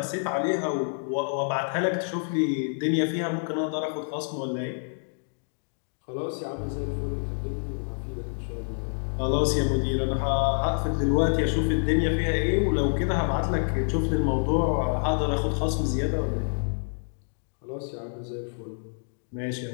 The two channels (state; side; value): silent; right; digital silence